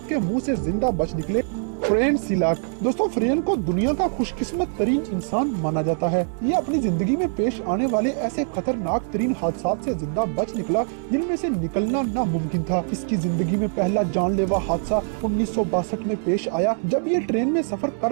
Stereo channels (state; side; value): silent; left; 63 dB below the other